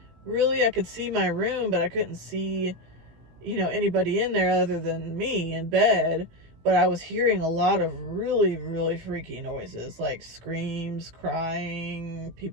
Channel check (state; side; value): late; left; 18 ms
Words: Really, I could see my room, but I couldn't see, anybody in there other than me in bed. but I was hearing a lot of really, really freaky noises, like screams, crying,